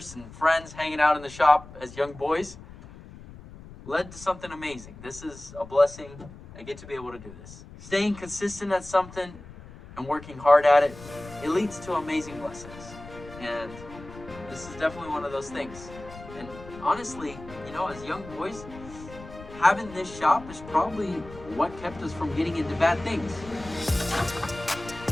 and friends hanging out in the shop as young boys led to something amazing. This is a blessing. I get to be able to do this. Staying consistent at something and working hard at it, it leads to amazing blessings. And this is definitely one of those things. And honestly, you know, as young boys, having this shop is probably what kept us from getting into bad things.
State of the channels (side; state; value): left; noise; rumble, 16 dB below the sound